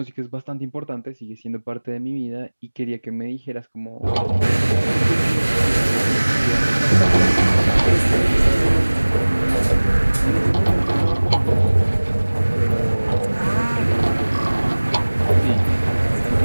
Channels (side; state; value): both; inverted; correlation -1.00